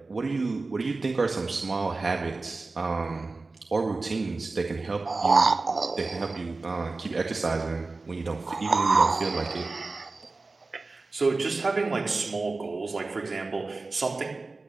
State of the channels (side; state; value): left; quieter; 3.6 dB